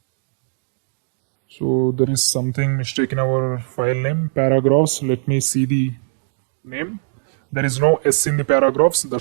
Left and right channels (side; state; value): left; silent; digital silence